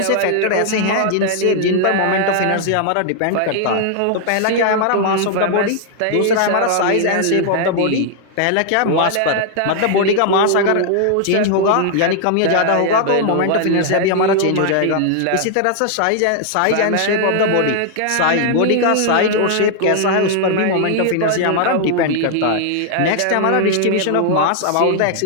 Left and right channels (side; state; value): both; different; correlation 0.00